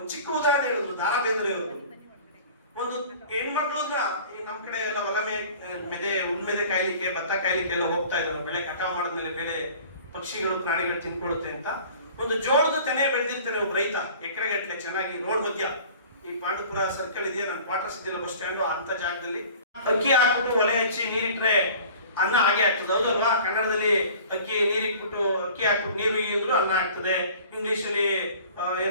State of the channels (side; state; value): both; inverted; correlation -0.45